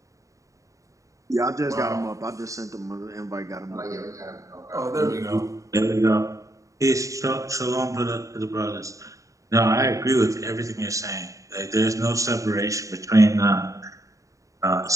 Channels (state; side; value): late; left; 0.16 ms